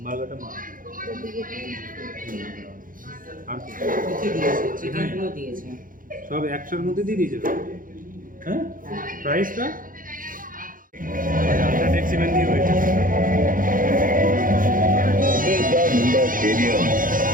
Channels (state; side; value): late; left; 0.40 ms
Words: বার্গারটা মা আর চিকেনগুলো দিয়েছে সব একশোর মধ্যে দিয়ে দিয়েছে তো। হ্যাঁ, প্রাইসটা আচ্ছা ট্যাক্সিম্যান দিয়ে হয়েছে। स्टेडियम